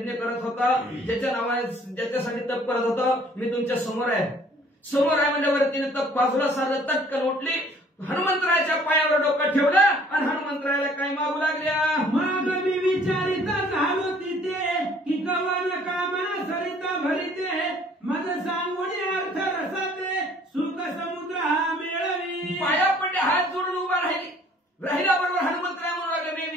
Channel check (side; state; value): both; normal; correlation 0.57